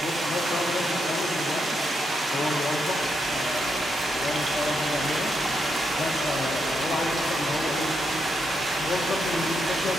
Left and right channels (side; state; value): both; normal; correlation 0.81